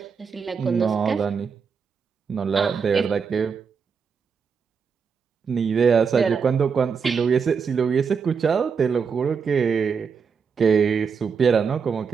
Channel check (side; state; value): left; quieter; 6.0 dB